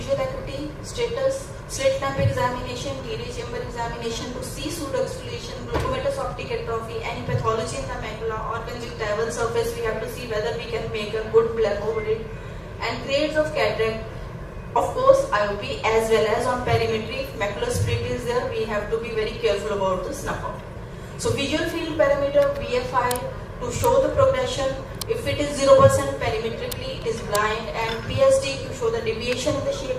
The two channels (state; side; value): identical; both; correlation 1.00